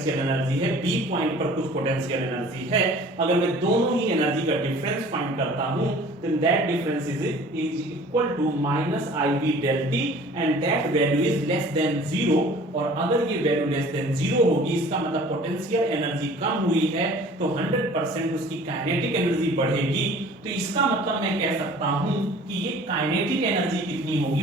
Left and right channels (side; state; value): both; normal; correlation 0.48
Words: एनर्जी है, B पॉइंट पर कुछ पोटेंशियल एनर्जी है। अगर मैं दोनों ही एनर्जी का डिफरेंस फाइंड करता हूं, then that difference is equal to minus IB del T, and that value is less than 0, zero, और अगर ये वैल्यू लेस देन जीरो होगी इसका मतलब पोटेंशियल एनर्जी कम हुई है, तो 100% उसकी काइनेटिक एनर्जी बढ़ेगी। तो इसका मतलब मैं कह सकता हूं कि ये काइनेटिक एनर्जी कितनी होगी